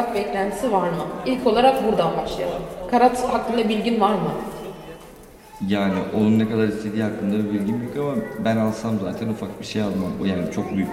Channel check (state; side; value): identical; both; correlation 1.00